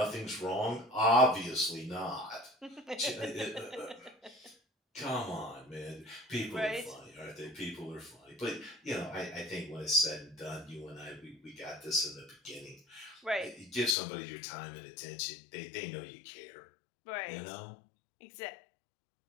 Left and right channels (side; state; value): right; drops out; at 14.0 s